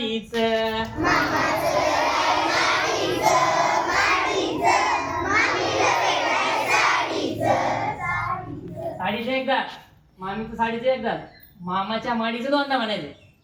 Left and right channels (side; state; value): both; identical; correlation 1.00